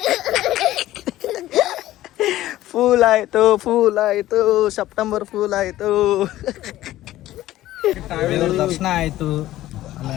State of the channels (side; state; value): right; quieter; 14.9 dB